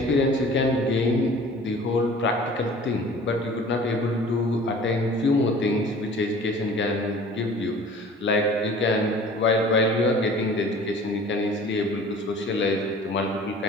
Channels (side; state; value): both; normal; correlation 0.46